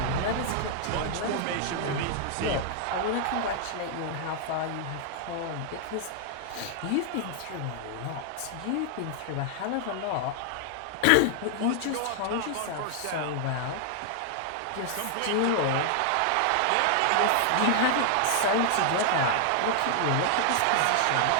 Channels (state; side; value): different; both; correlation 0.00